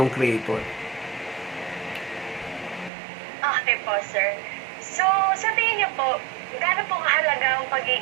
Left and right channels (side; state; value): left; drops out; at 2.9 s